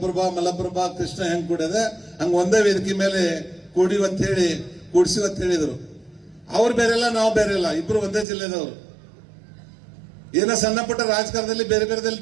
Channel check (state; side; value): drops out; left; at 8.2 s